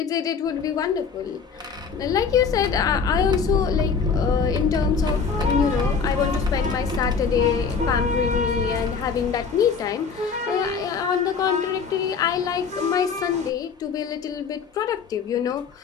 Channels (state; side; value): quieter; right; 5.8 dB